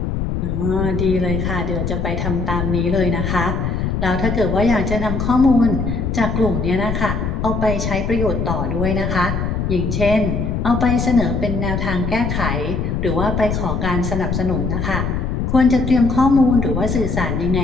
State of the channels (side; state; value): left; noise; rumble, 2 dB below the sound